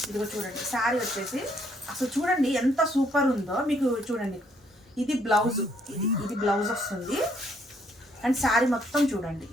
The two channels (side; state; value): both; normal; correlation 0.69